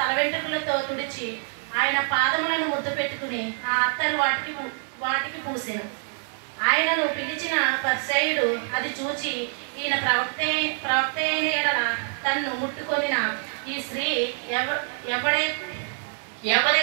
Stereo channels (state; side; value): silent; left; 57 dB below the other